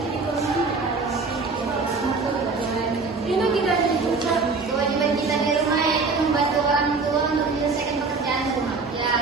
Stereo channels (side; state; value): left; quieter; 4.2 dB